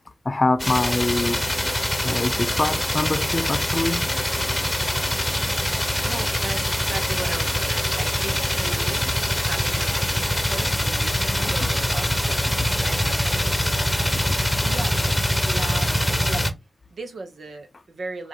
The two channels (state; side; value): normal; both; correlation 0.97